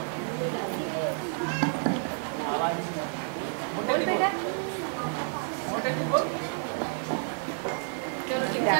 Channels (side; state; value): left; silent; 58 dB below the other